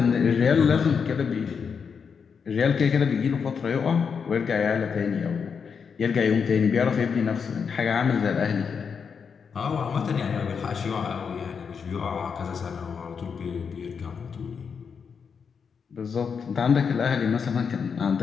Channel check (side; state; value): right; quieter; 6.2 dB